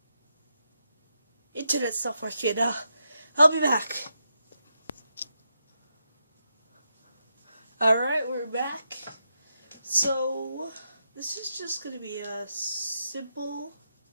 internet's not working. I'll be back. Alright, we're back. So, this is just gonna be a simple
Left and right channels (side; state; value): both; inverted; correlation -0.84